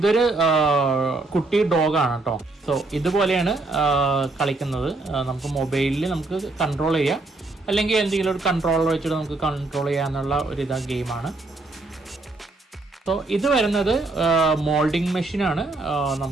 കുട്ടി ഡോഗാണ് കേട്ടോ. സോ ഇതുപോലെയാണ് കളിക്കുന്നത്. നമുക്ക് മൊബൈലിൽ നമുക്ക് കൺട്രോൾ ചെയ്യാം, അല്ലെങ്കിൽ എന്തെങ്കിലും ഒരു കൺട്രോളർ വെച്ചിട്ട് നമുക്ക് കൺട്രോൾ ചെയ്യാന്നുള്ള ഒരു ഗെയിമാണ്. സോ ഇത് വരുന്നത് മോൾഡിങ് മെഷീനാണ്.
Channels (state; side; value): quieter; left; 3.2 dB